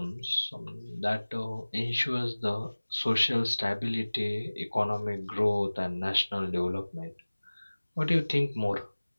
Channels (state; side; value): inverted; both; correlation -1.00